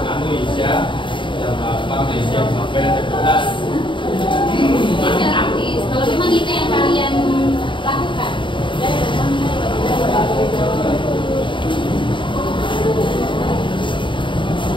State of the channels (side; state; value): right; late; 0.24 ms